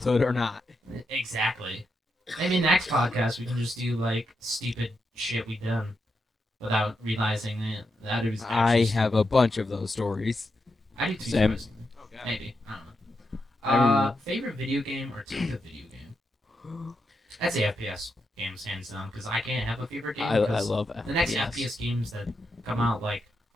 or not? Exactly. Maybe next podcast we can just do like stupid shit we done without realizing that it was. I actually have a bunch of those stories. I do too. Same. Surprisingly. Maybe I don't know. I remember- Favorite video game or type of video game? I'd say FPS games hands down because I can't have a favorite game. I 'cause love FPS. the next FPS games that come out, like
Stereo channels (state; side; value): normal; both; correlation 0.85